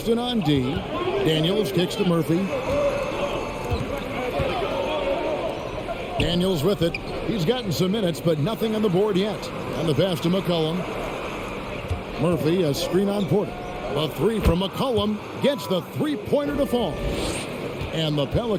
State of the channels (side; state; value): both; identical; correlation 1.00